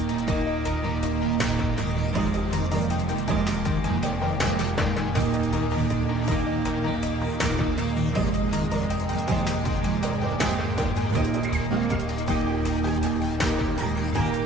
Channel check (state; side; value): normal; both; correlation 0.60